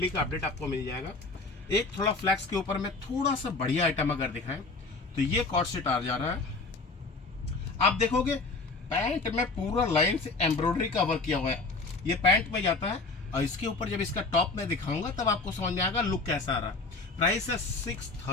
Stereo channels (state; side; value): quieter; right; 3.7 dB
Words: का अपडेट आपको मिल जाएगा। एक थोड़ा फ्लैक्स के ऊपर में थोड़ा सा बढ़िया आइटम अगर दिखाएं तो ये कॉर्ड सेट आ जा रहा है। आप देखोगे पैंट में पूरा लाइन से एम्ब्रॉयडरी का वर्क किया हुआ है। ये पैंट में जाता है और इसके ऊपर जब इसका टॉप में दिखाऊंगा तब आपको समझ में आएगा लुक कैसा आ रहा है। प्राइस है